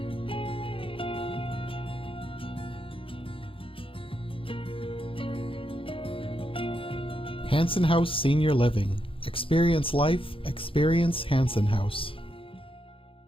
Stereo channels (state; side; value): late; right; 0.26 ms